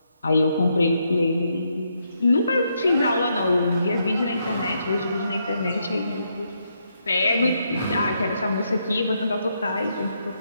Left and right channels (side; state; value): both; inverted; correlation -0.78